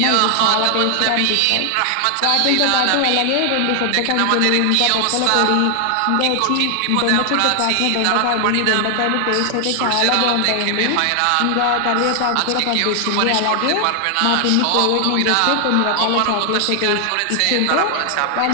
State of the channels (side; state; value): both; different; correlation 0.00